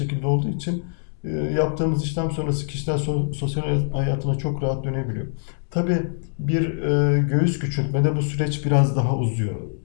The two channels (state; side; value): silent; right; digital silence